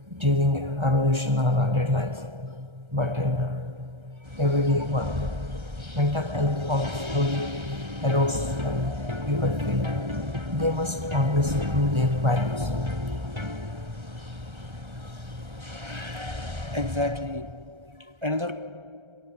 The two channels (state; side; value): late; left; 1.3 ms